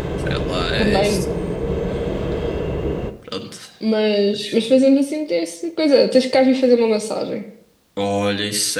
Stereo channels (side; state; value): both; identical; correlation 1.00